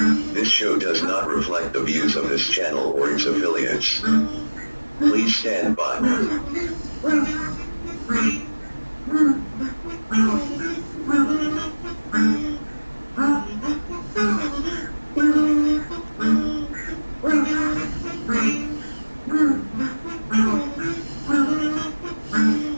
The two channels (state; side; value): inverted; both; correlation -1.00